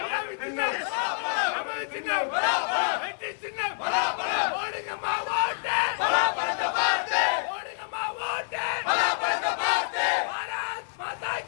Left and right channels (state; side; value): silent; right; digital silence